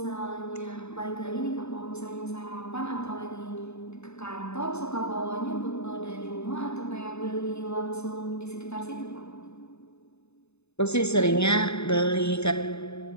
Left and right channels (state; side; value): late; right; 0.80 ms